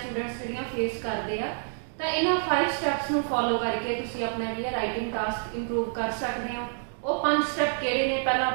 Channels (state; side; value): silent; left; digital silence